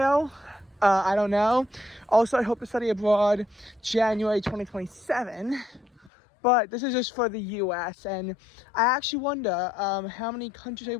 I don't know. Also, I hope to study abroad January 2027. But this is just for the US, and I actually wonder how many countries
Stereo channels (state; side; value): drops out; right; at 6.1 s